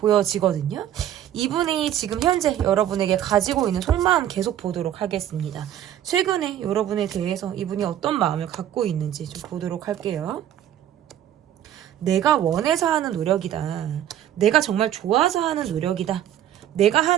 이분이 지금 현재 여러분에게 가지고 있는 속마음 계속 보도록 하겠습니다. 최근에 여러분에 대해서 이분이 어떤 마음을 갖고 있는지 좀 보도록 할게요. 내가 원해서 하는 노력이다. 내가 정말 좋아서 하는 노력이다. 내가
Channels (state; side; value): quieter; left; 11.3 dB